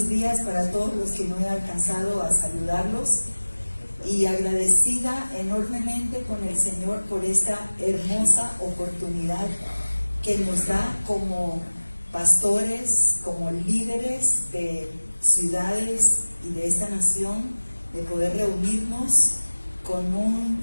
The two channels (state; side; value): inverted; both; correlation -1.00